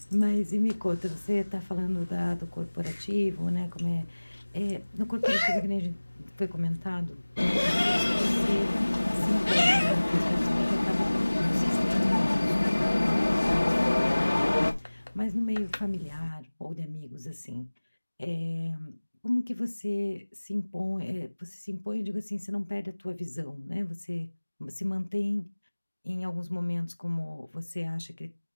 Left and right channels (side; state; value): both; inverted; correlation -1.00